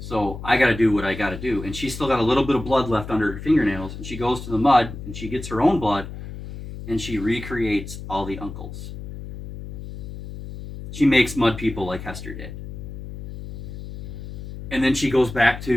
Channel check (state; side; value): noise; left; hum, 10 dB below the sound